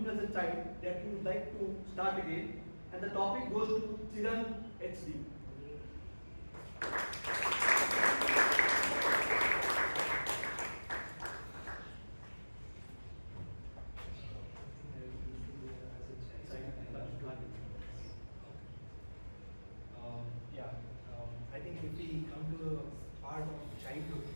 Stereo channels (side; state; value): both; inverted; correlation -1.00